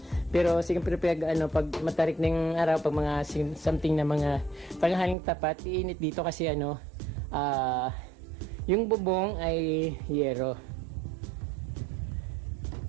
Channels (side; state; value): left; drops out; at 5.2 s